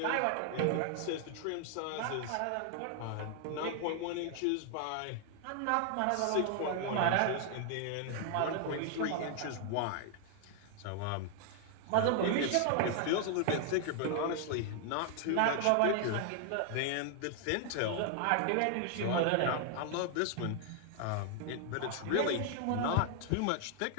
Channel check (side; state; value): both; different; correlation 0.00